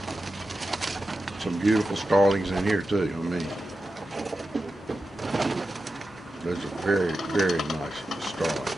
Some beautiful starlings in here too. I mean, those are very, very nice starlings.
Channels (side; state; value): both; normal; correlation 0.91